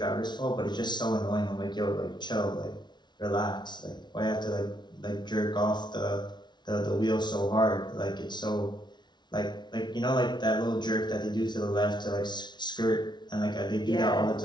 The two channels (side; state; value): right; late; 0.21 ms